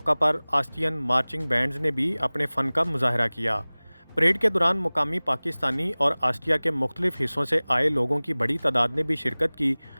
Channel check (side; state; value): both; inverted; correlation -1.00